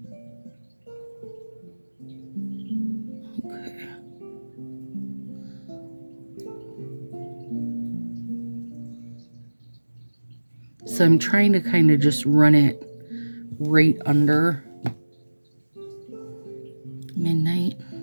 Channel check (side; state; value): both; inverted; correlation -1.00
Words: Okay. So I'm trying to kind of just run it right under midnight.